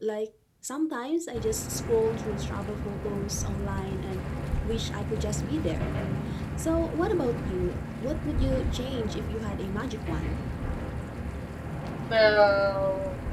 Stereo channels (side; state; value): both; identical; correlation 1.00